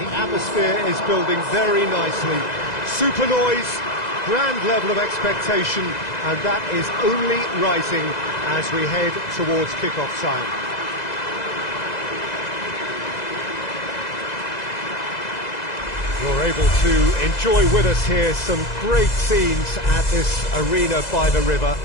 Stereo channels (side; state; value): right; late; 2.0 ms